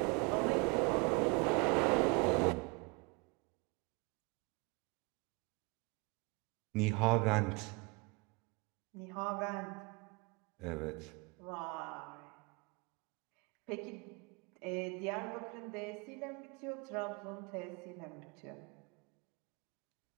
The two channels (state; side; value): quieter; left; 28.8 dB